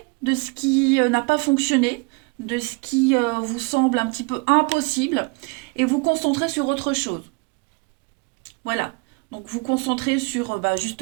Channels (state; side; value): quieter; left; 29.6 dB